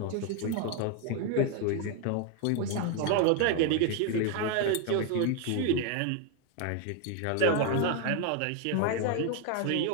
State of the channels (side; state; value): both; different; correlation 0.01